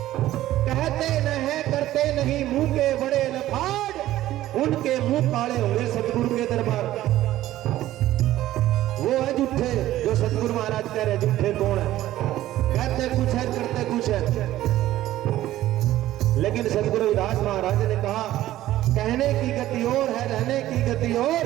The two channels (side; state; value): left; quieter; 14.4 dB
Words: कहते न है करते नहीं, मुंह के बड़े लफाड़, उनके मुंह काले हुए सतगुरु के दरबार। वो है झूठे जो सतगुरु महाराज कह रहे, झूठे कौन है? कहते कुछ है करते कुछ है। लेकिन सतगुरु रविदास महाराज ने कहा कहने की गति और है, रहने की गति